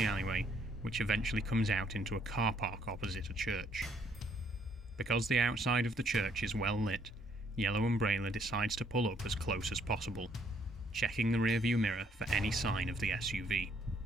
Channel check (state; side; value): normal; both; correlation 0.67